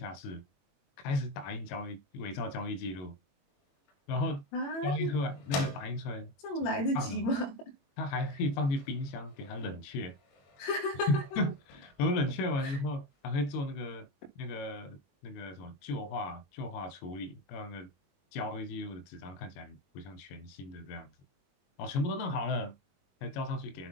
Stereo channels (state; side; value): late; right; 22 ms